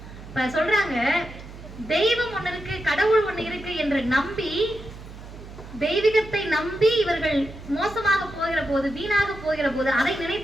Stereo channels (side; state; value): right; noise; hum, 15 dB below the sound